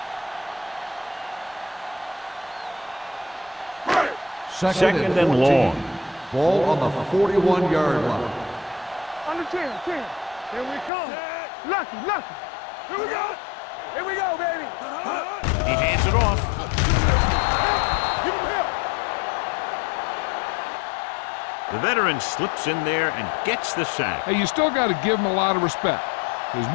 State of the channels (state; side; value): drops out; right; at 10.9 s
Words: Second and long. Ball on the 41-yard line. Under 10. Here we come. Lucky. Here we go. Here we go, baby. He hands it off. Give him help. The veteran slips in there and gets the sack. Hey, you still got to give him a lot of respect. His